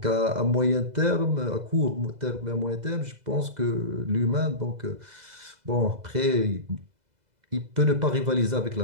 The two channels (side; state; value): left; late; 2.0 ms